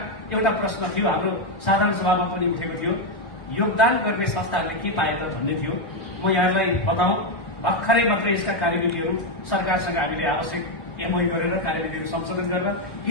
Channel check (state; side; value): late; right; 1.1 ms